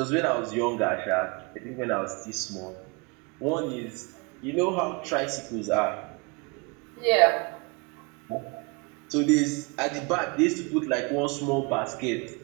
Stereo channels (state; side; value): quieter; left; 29.9 dB